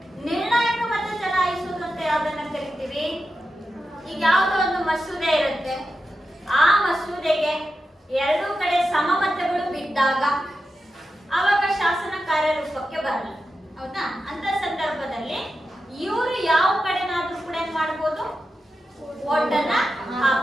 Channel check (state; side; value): normal; both; correlation 0.90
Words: ನಿರ್ಣಾಯಕ ಮತ ಚಲಾಯಿಸುವುದು ಅಂತ ಯಾವ್ದನ್ನ ಕರಿತೀವಿ? ಈಗ ಯಾವುದೋ ಒಂದು ಮಸೂದೆ ಇರುತ್ತೆ, ಆ ಮಸೂದೆಗೆ ಎರಡೂ ಕಡೆ ಸಮಮತಗಳು ಬಿದ್ದಾಗ ಆವಾಗ ಶಾಸನ ಕಾರ್ಯರೂಪಕ್ಕೆ ಬರಲ್ಲ, ಹೌದಾ? ಅಂತ ಸಂದರ್ಭದಲ್ಲಿ ಇವರು ಯಾವ ಕಡೆನಾದ್ರೂ ಕೂಡ ಏನ್ ಮಾಡ್ಬೋದು? ಓಟನ್ನ